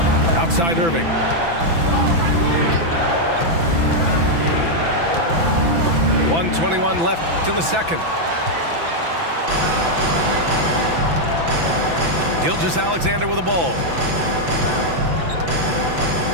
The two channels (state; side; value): late; left; 6.0 ms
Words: Outside Irving. .121 left in the second. Gilgeous-Alexander with the ball.